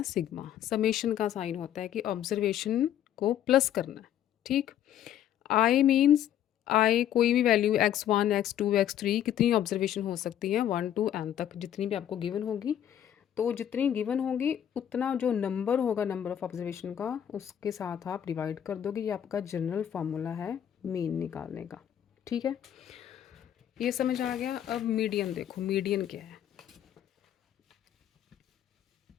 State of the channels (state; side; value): quieter; right; 10.6 dB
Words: सिग्मा। समेशन का साइन होता है कि ऑब्जर्वेशन को प्लस करना है। ठीक, आई मीन्स आई कोई भी वैल्यू x1 x2 x3 कितनी ऑब्जर्वेशन हो सकती है? 1 to n तक, जितनी भी आपको गिवन होगी। तो जितनी गिवन होगी उतना जो नंबर होगा नंबर ऑफ ऑब्जर्वेशन का, उसके साथ आप डिवाइड कर दोगे। ये आपका जनरल फार्मूला है मीन निकालने का। ठीक है, ये समझ आ गया। अब मीडियन देखो, मीडियन क्या है?